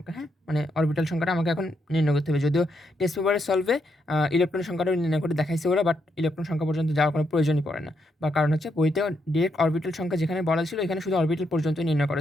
হ্যাঁ, মানে অরবিটাল সংখ্যাটা আমাকে এখন নির্ণয় করতে হবে। যদিও টেস্ট পেপারের সলভে ইলেকট্রন সংখ্যাটাও নির্ণয় করে দেখাইছে ওরা, বাট ইলেকট্রন সংখ্যা পর্যন্ত যাওয়ার কোনো প্রয়োজনই পড়ে না। বা কারণ হচ্ছে বইতেও ডিরেক্ট অরবিটাল সংখ্যা যেখানে বলা ছিল, এখানে শুধু অরবিটাল পর্যন্ত নির্ণয়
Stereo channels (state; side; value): normal; both; correlation 0.79